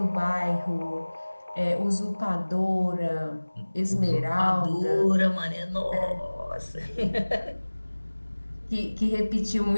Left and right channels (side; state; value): both; inverted; correlation -1.00